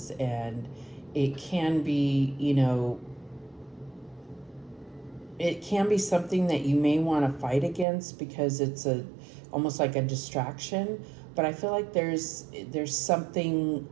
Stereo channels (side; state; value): left; drops out; at 7.9 s